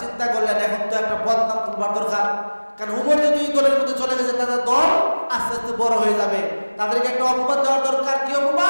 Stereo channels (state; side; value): inverted; both; correlation -1.00